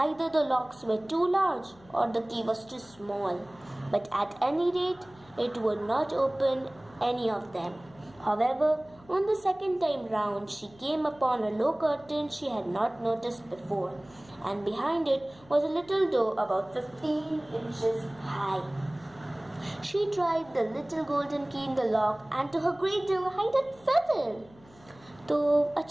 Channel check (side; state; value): left; noise; hum, 26 dB below the sound